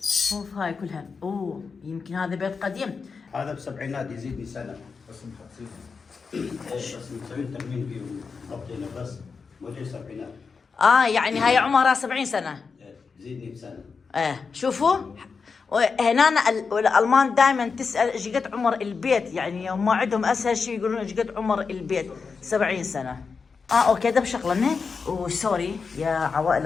شوف هاي كلها. يمكن هذا بيت قديم. هذا بالسبعينات يزيدني سنة. بس مسوين ترميم فيه وضبطينه بس مو جاي سبعينات. يعني هاي عمرها 70 سنة. يزيدني بسنة. شوفوا. هنا الالمان دائما تسال ايش قد عمر البيت، يعني هم عندهم اسهل شيء يقولون ايش قد عمر البيت. 70 سنة. اوكي ده بشغلنا. وسوري يا عوائل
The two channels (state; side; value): quieter; right; 5.2 dB